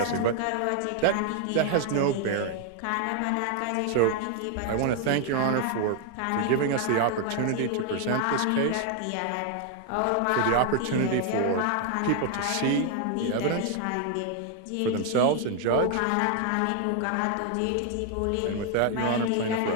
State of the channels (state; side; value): different; both; correlation 0.00